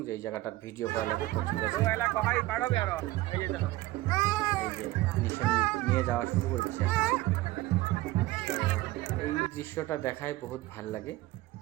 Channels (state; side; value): quieter; left; 18.0 dB